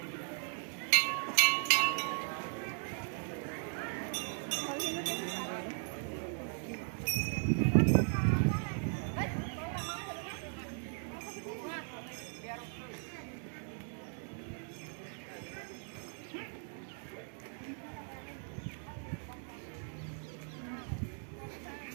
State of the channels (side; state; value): left; silent; 52 dB below the other